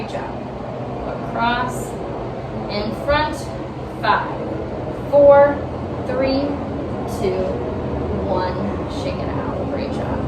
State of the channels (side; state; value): both; identical; correlation 1.00